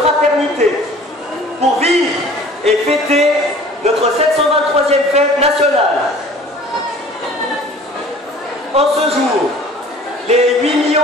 fraternité, pour vivre et fêter notre 723e fête nationale. En ce jour, les 8 millions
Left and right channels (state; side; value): normal; both; correlation 0.48